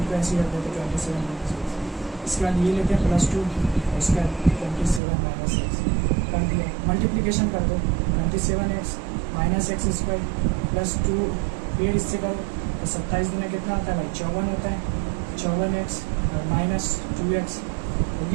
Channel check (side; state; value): left; drops out; at 5.0 s